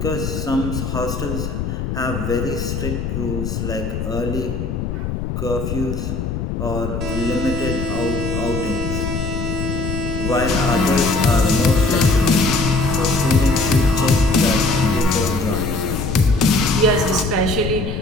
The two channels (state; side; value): noise; left; rumble, 3 dB below the sound